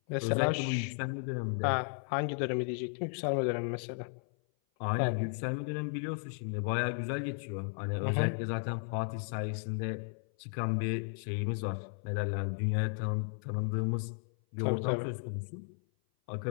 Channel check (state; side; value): silent; right; 55 dB below the other